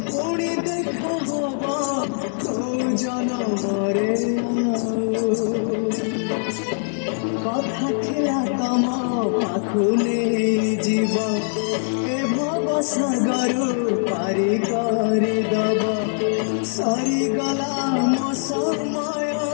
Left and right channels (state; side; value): silent; right; digital silence